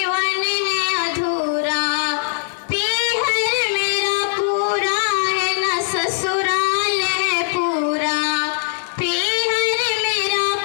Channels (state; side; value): silent; right; digital silence